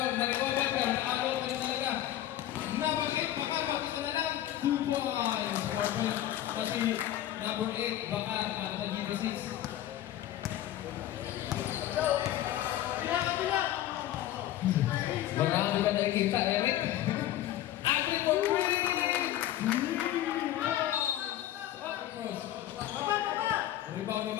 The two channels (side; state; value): right; quieter; 13.0 dB